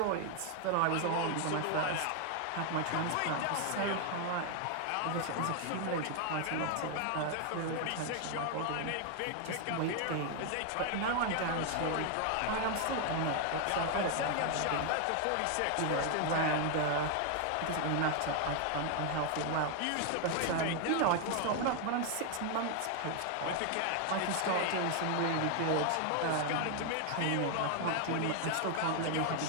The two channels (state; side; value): different; both; correlation 0.00